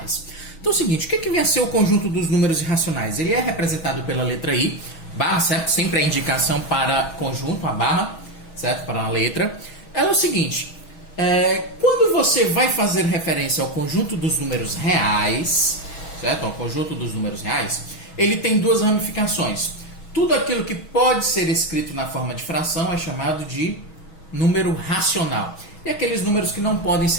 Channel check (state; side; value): late; right; 6.2 ms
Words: Então é o seguinte, o que vem a ser o conjunto dos números irracionais? Ele é representado pela letra I, barra, certo? Sempre a indicação para conjunto, a barra, certo? Para a letra. Ela é o seguinte, quando você vai fazer referência ao conjunto dos números reais, certo? Ao conjunto dos números reais, ele tem duas ramificações. Tudo aquilo que pode ser escrito na forma de fração é chamado de número racional. E aqueles números que não podem